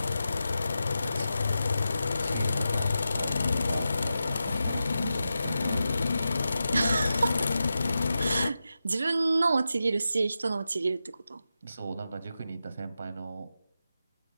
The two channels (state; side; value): inverted; both; correlation -0.90